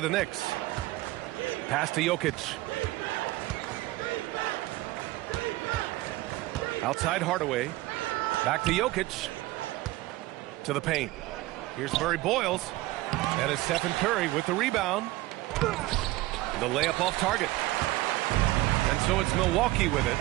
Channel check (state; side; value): quieter; left; 18.3 dB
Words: the Knicks. Pass to Jokic. Outside Hardaway. Back to Jokic. To the paint. Here's Murray Boyles. And it's Stephen Curry with the rebound. The layup off target. And so it's Milwaukee with it.